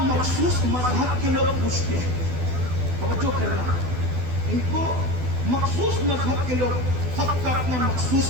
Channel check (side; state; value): left; late; 12 ms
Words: مخصوص مذہب کے لوگ پوچھتے ہیں. توجہ کرنا، ان کو مخصوص مذہب کے لوگ، سب کا اپنا مخصوص